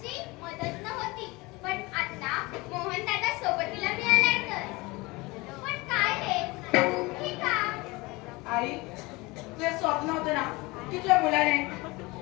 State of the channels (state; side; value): quieter; right; 23.4 dB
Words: मदत नव्हती, पण आता मोहन दादा सोबतीला मिळालाय तर. पण काय रे, दुःखी का? आई, तुझे स्वप्न होतं ना की तुझ्या मुलाने